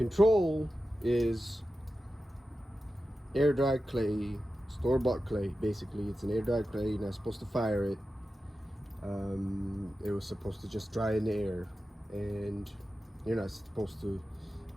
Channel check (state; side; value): normal; both; correlation 0.92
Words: is air dried clay, store-bought clay. Basically, it's an air dried clay. You're not supposed to fire it. It was supposed to just dry in the air, and you're not supposed to